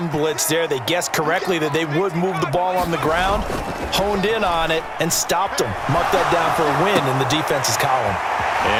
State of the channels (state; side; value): identical; both; correlation 1.00